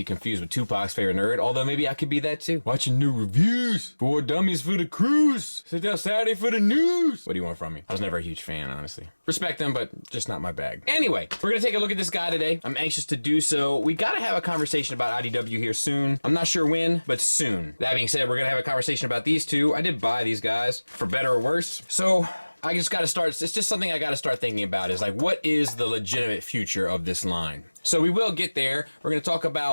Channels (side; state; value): both; inverted; correlation -1.00